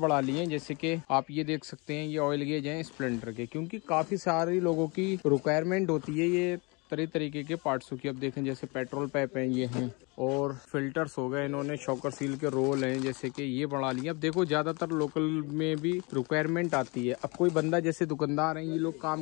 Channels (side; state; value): right; quieter; 28.8 dB